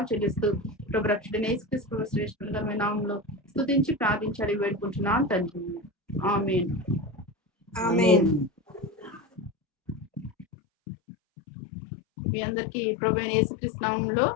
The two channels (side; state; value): right; drops out; at 10.5 s